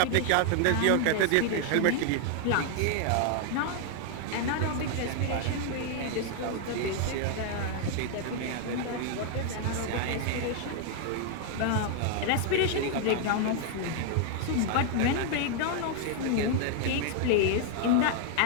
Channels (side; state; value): both; different; correlation 0.00